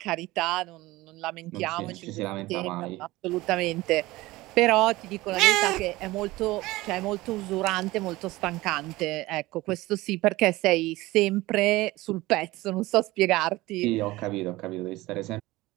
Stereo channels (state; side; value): quieter; left; 19.3 dB